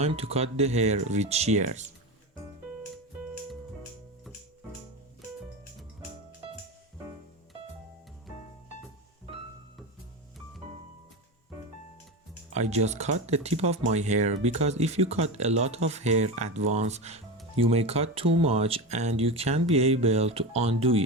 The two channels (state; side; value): normal; both; correlation 0.21